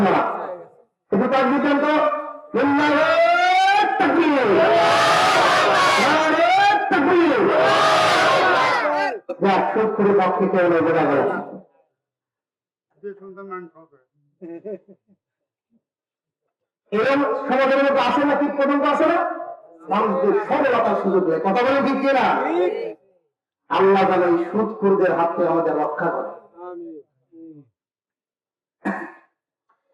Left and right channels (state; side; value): identical; both; correlation 1.00